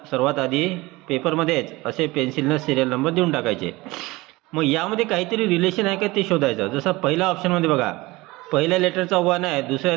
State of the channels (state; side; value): quieter; left; 21.3 dB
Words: आधी पेपरमध्येच असे पेन्सिलनं सिरियल नंबर देऊन टाकायचे. मग यामध्ये काहीतरी रिलेशन आहे का ते शोधायचं. जसं पहिल्या ऑप्शनमध्ये बघा, पहिल्या लेटरचा 1 आहे, दुसऱ्या